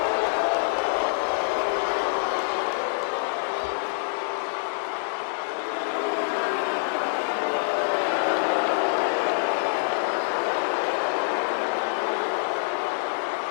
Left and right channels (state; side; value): silent; right; digital silence